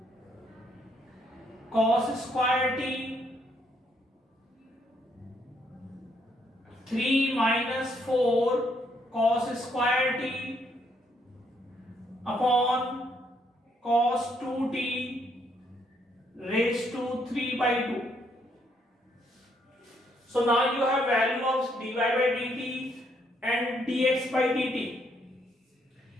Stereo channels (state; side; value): normal; both; correlation 0.72